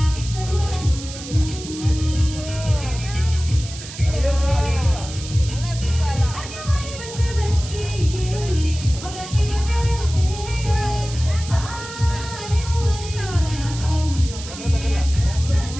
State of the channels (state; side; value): noise; right; hiss, 12 dB below the sound